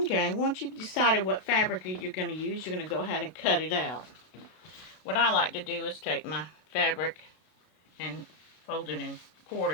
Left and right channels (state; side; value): late; right; 32 ms